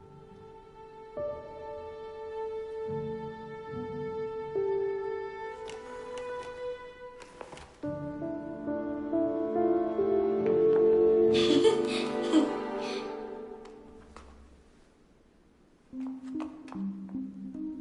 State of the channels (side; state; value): both; identical; correlation 1.00